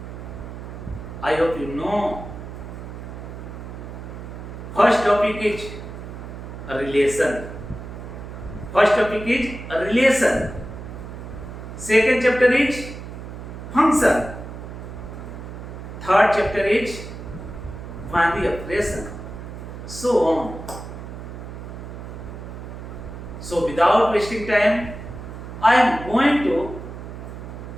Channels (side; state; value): right; noise; hum, 10 dB below the sound